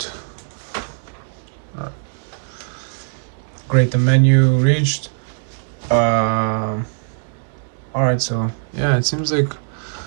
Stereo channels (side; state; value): left; silent; digital silence